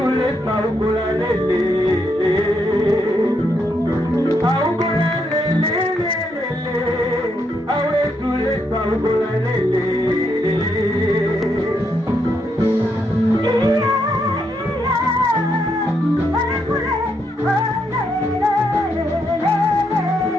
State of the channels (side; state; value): both; normal; correlation 0.78